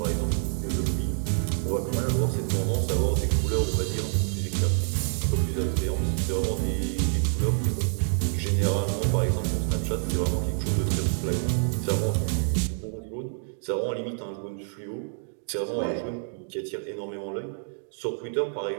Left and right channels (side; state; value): left; silent; 60 dB below the other